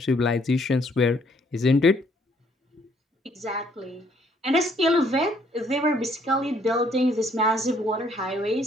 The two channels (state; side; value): normal; both; correlation 0.66